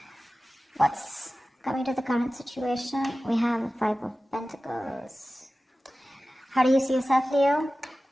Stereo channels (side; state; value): both; normal; correlation 0.96